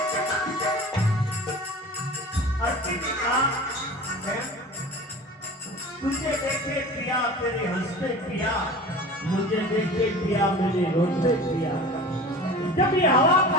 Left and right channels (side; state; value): both; normal; correlation 0.37